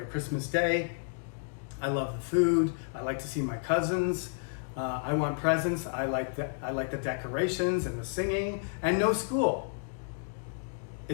Christmas Day, I love the food, I like to see my cousins, I want presents, I like the decorations and the singing, and no school.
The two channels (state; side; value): silent; right; digital silence